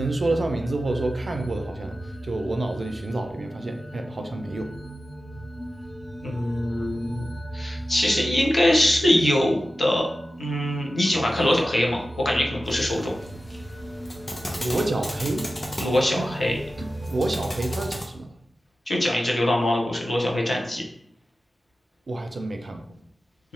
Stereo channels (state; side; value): normal; both; correlation 0.94